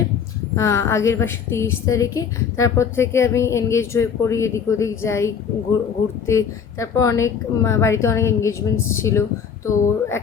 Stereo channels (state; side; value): quieter; right; 7.0 dB